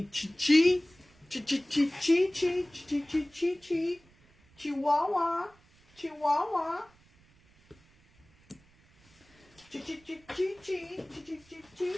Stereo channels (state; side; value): noise; right; rumble, 30 dB below the sound